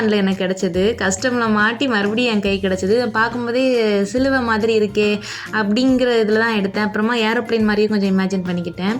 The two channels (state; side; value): identical; both; correlation 1.00